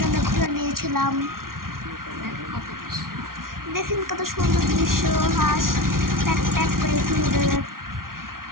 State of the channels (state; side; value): late; left; 0.92 ms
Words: ঘোড়া নিয়েছিলাম। দেখেন কত সুন্দর দৃশ্য, হাঁস প্যাক প্যাক করে